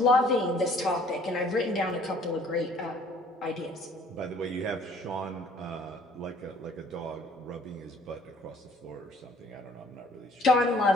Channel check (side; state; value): both; normal; correlation 0.57